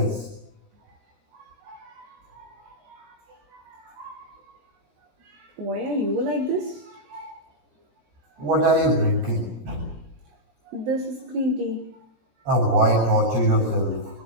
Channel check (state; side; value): late; left; 17 ms